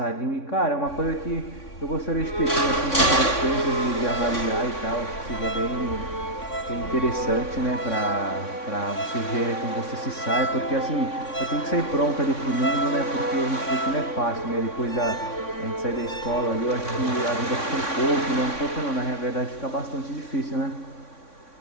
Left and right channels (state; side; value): late; right; 3.6 ms